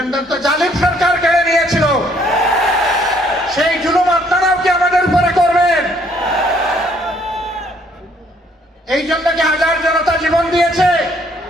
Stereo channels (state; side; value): normal; both; correlation 0.65